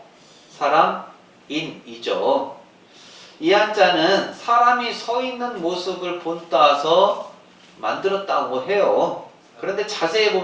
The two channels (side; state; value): both; identical; correlation 1.00